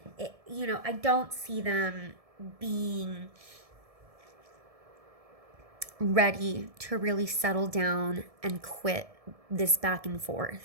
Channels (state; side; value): late; left; 1.7 ms